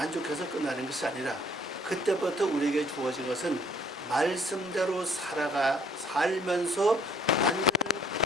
끝나는 것이 아니라 그때부터 우리에게 주어진 것은 말씀대로 살면서 완전한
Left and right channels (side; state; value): both; normal; correlation 0.61